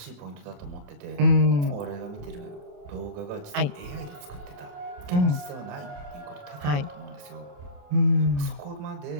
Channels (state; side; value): late; left; 28 ms